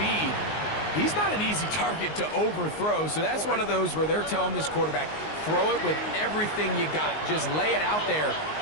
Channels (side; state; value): right; late; 19 ms